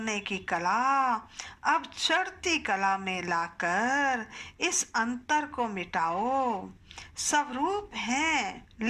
की कला अब चढ़ती कला में लाकर इस अंतर को मिटाओ। सब रूप हैं,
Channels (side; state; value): both; identical; correlation 1.00